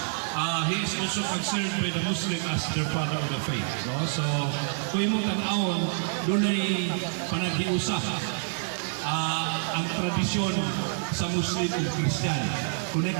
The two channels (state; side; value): silent; left; 56 dB below the other